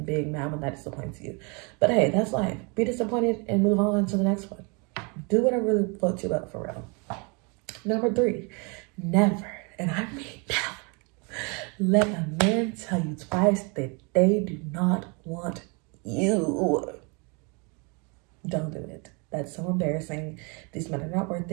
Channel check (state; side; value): quieter; left; 32.2 dB